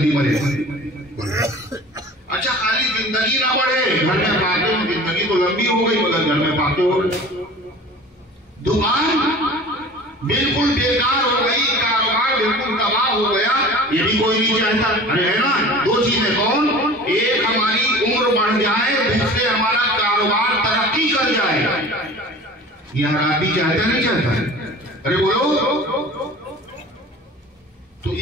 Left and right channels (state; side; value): normal; both; correlation 0.41